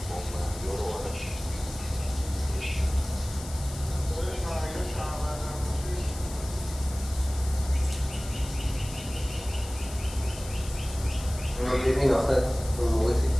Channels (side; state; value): left; noise; hiss, 14 dB below the sound